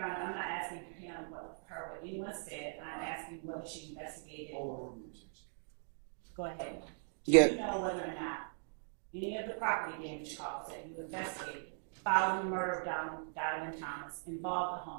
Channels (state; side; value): silent; left; digital silence